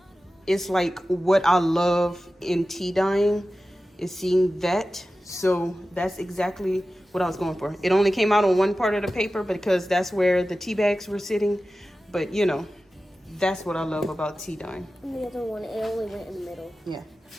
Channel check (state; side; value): normal; both; correlation 0.95